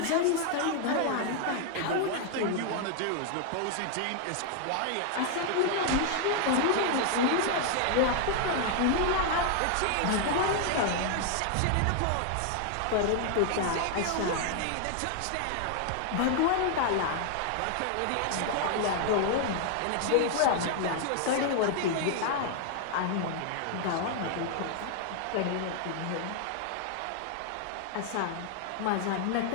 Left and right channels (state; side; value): different; both; correlation 0.00